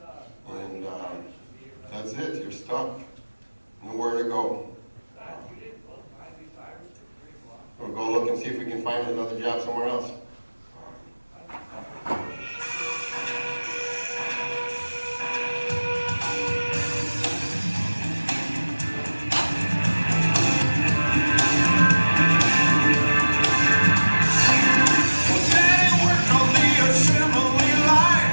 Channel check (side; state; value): both; inverted; correlation -1.00